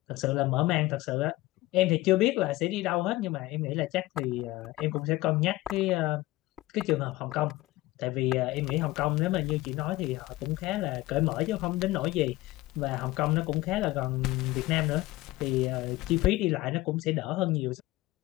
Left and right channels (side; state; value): right; quieter; 18.6 dB